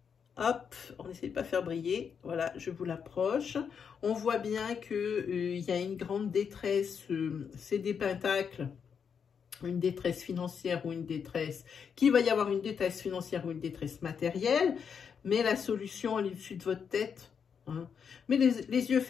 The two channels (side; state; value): right; quieter; 6.8 dB